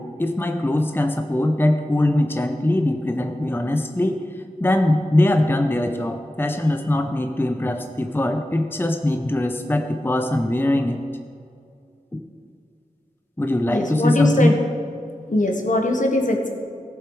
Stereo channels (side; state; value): both; normal; correlation 0.90